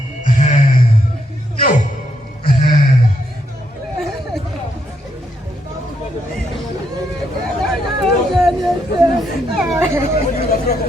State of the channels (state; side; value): normal; both; correlation 0.77